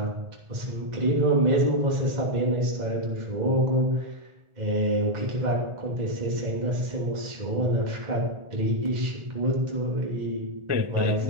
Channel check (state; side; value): late; left; 1.4 ms